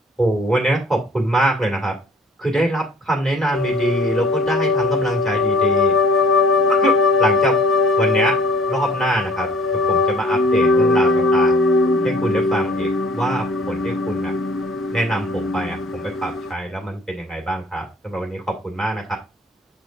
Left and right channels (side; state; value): both; normal; correlation 0.54